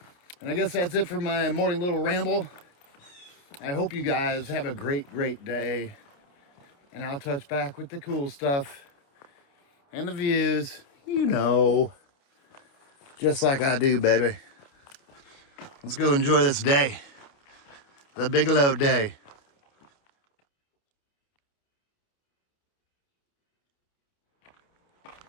And I guess that's it for my morning little ramble. I hope you guys have a great, great day. And I'll touch back with the cool stuff and the views, just like I do, baby. Let's go enjoy this day, the Bigelow day.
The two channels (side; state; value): right; late; 29 ms